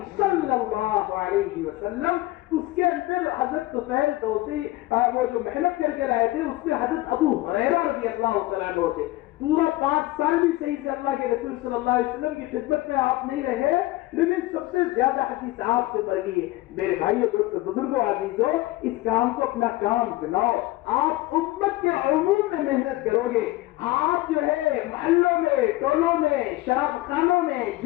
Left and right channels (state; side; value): quieter; right; 18.3 dB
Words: صلی اللہ علیہ وسلم. اس کے اندر حضرت طفیل دوسی وہ جو محنت کر کے رہے تھے اس میں حضرت ابو ہریرہ رضی اللہ تعالیٰ عنہ تھے. پورا 5 سال بھی صحیح سے اللہ کے رسول صلی اللہ علیہ وسلم کی خدمت میں آپ نہیں رہے، لیکن سب سے زیادہ حدیث آپ سے بڑھی ہے. میرے بھائیو، دوستو، بزرگوں، عزیزو، اس کام کو اپنا کام بناؤ. آپ امت کے عموم میں محنت کرو گے. آپ جو ہے محلوں میں، ٹولوں میں، شراب خانوں میں،